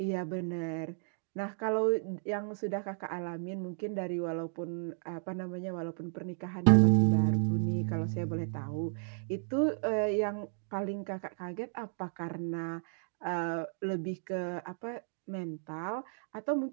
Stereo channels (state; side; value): silent; left; digital silence